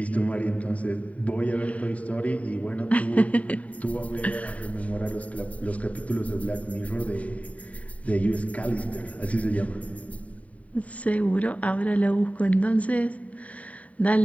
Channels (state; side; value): late; right; 0.068 ms